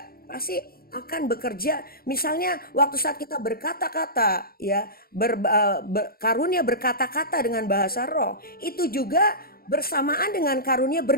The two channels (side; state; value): right; late; 0.44 ms